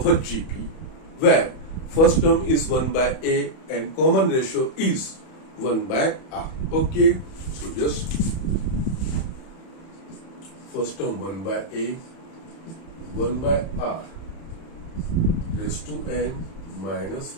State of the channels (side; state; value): right; late; 31 ms